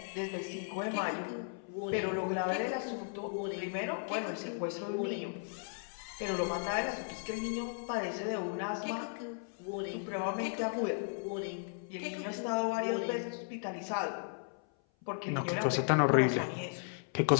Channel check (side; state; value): right; silent; 54 dB below the other